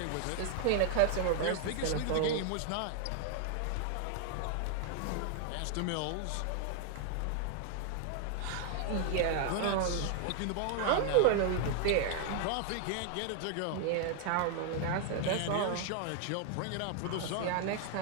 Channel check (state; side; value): different; both; correlation 0.00